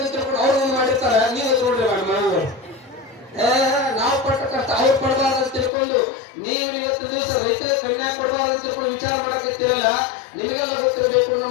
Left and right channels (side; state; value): right; drops out; at 5.7 s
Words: ತಿಳ್ಕೊಂಡು ಅವ್ರು ಮಾಡಿರ್ತಾರ. ನೀವು ನೋಡ್ರಿ ಮನೆಗಳು ನಾವು ಪಟ್ಟ ಕಷ್ಟ ಅವ್ರು ಪಡಬಾರ್ದು ಅಂತ ತಿಳ್ಕೊಂಡು ನೀವು ಇವತ್ತು ದಿವಸ ರೈತರಿಗೆ ಕನ್ಯಾ ಕೊಡಬಾರ್ದು ಅಂತ ತಿಳ್ಕೊಂಡು ವಿಚಾರ ಮಾಡಕತ್ತಿರಲ್ಲ. ನಿಮಗೆಲ್ಲ ಗೊತ್ತಿರಬೇಕು,